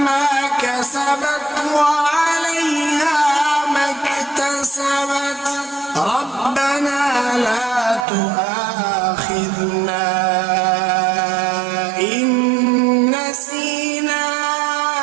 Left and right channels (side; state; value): left; drops out; at 8.1 s